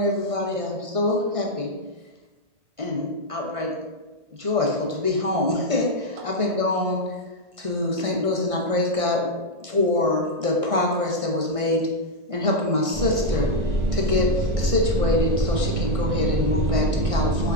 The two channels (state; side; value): late; left; 1.6 ms